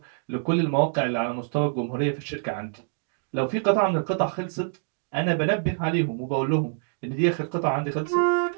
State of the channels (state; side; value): silent; left; digital silence